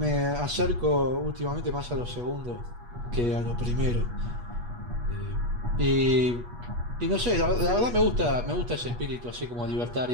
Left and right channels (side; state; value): left; late; 8.3 ms